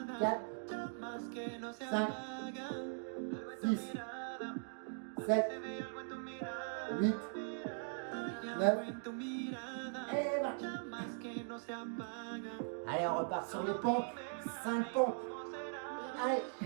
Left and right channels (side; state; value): left; silent; digital silence